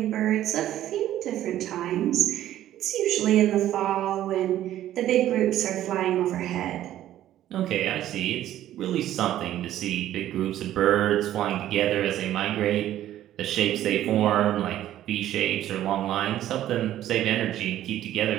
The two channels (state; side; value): quieter; left; 12.7 dB